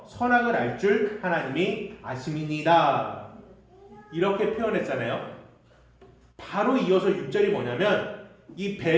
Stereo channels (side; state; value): both; identical; correlation 1.00